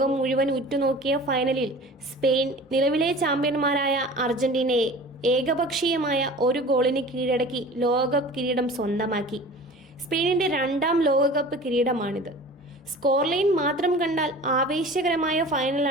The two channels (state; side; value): normal; both; correlation 0.41